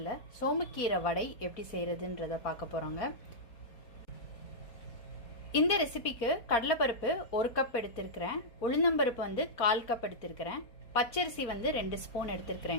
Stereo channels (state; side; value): late; right; 4.4 ms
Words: சோமக்கீரை வடை எப்படி செய்யறதுன்றத பார்க்க போறோங்க. இந்த ரெசிபிக்கு கடலைப்பருப்பு 1 கப் எடுத்துக்கிறேன், உளுந்தம்பருப்பு வந்து 1/4 கப் எடுத்துக்கிறேன், பச்சரிசி வந்து 2 ஸ்பூன்